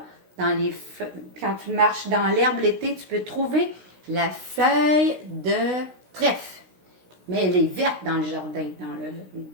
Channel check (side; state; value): left; late; 16 ms